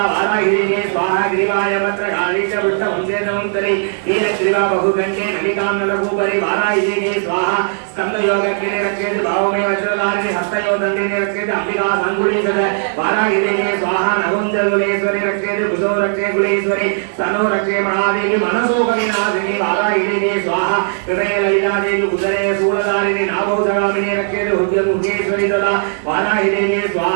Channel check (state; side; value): silent; left; digital silence